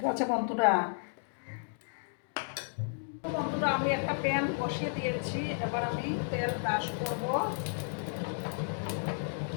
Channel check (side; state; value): right; silent; digital silence